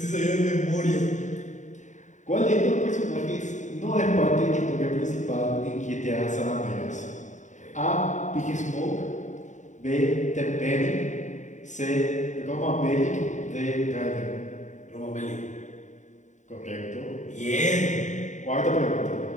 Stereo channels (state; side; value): late; right; 0.35 ms